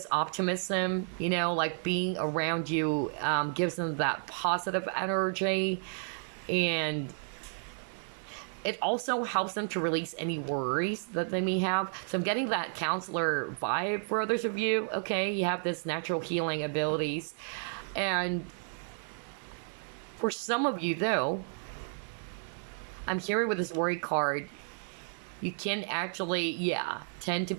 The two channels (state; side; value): silent; left; 56 dB below the other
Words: optimism, like being around you gives them that positive energy. And it also helps them to release any worries that they may have. So I'm getting that counselor vibe for others of you, okay? You have this natural healing abilities. And for some of you, though, I'm hearing with this worry card, you can actually, tend to